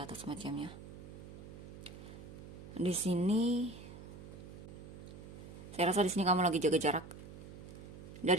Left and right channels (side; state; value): right; noise; hum, 13 dB below the sound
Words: atau semacamnya. Di sini saya rasa di sini kamu lagi jaga jarak